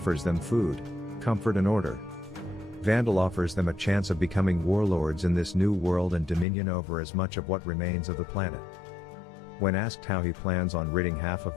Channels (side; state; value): right; drops out; at 6.5 s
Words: them food, comfort and order. Vandal offers them a chance of becoming warlords in this new world and dominion over as much of what remains of the planet. When asked how he plans on ridding half